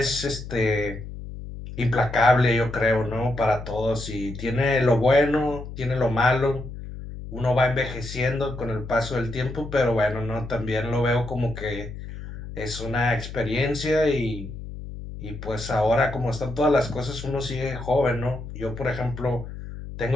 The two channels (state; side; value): noise; left; hum, 10 dB below the sound